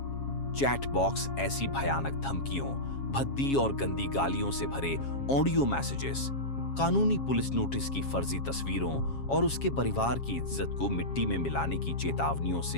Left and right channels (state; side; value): late; right; 7.3 ms